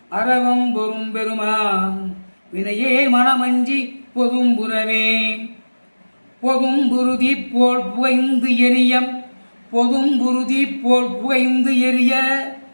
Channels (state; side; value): inverted; both; correlation -1.00